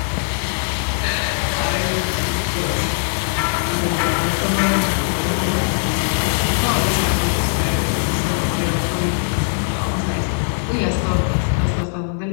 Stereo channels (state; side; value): silent; right; digital silence